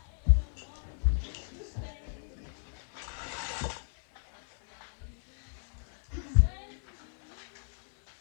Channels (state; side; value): silent; right; digital silence